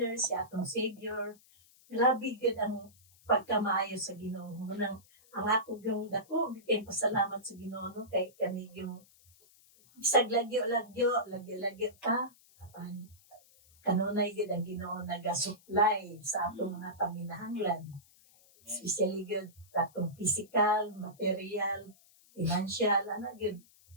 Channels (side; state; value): left; noise; hiss, 28 dB below the sound